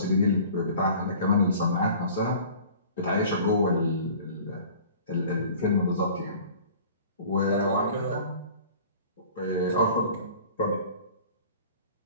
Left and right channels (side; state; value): both; inverted; correlation -0.46